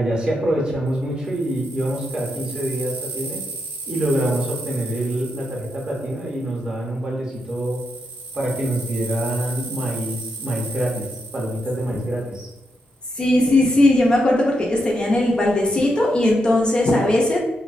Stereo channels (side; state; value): both; normal; correlation 0.83